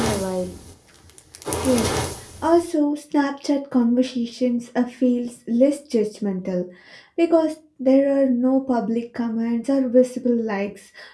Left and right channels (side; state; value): both; identical; correlation 1.00